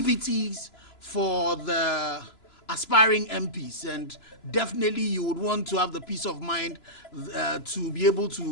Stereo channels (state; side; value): late; right; 3.0 ms